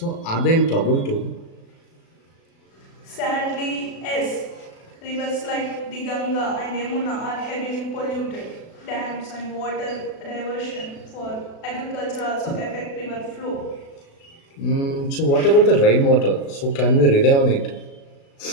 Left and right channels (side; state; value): right; late; 36 ms